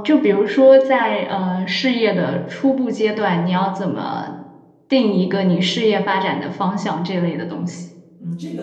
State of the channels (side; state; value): both; identical; correlation 1.00